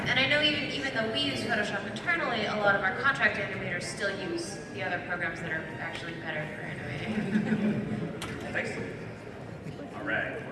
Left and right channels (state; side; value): identical; both; correlation 1.00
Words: I know even though we use Photoshop internally, a lot of our contract animators still use the other programs that are actually better for animating. Thanks. All right.